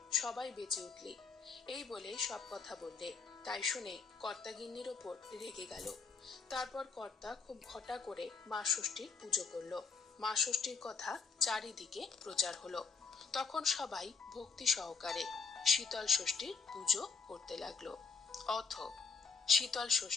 সবাই বেঁচে উঠলি। এই বলে সব কথা বললে। তাই শুনে কর্তা গিন্নির ওপর রেগে গেল। তারপর কর্তা খুব ঘটা করে মা ষষ্ঠীর পুজো করলো। মা ষষ্ঠীর কথা চারিদিকে প্রচার হলো। তখন সবাই ভক্তি সহকারে শীতল ষষ্ঠীর পুজো করতে লাগলো। অথ শীতল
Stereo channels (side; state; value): right; quieter; 5.1 dB